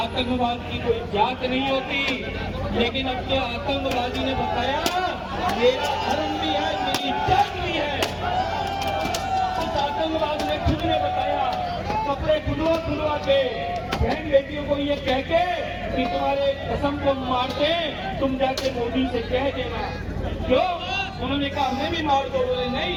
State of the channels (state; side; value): identical; both; correlation 1.00